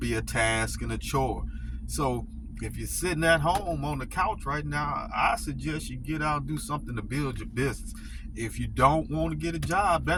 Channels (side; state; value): both; identical; correlation 1.00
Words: a task and a chore. So if you're sitting at home on the couch right now, I suggest you get out and do something to build your business. If you don't want to get a job,